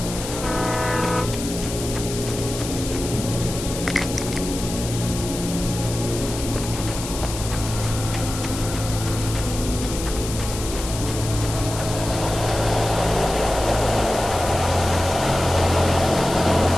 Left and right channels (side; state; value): left; noise; hiss, 8 dB below the sound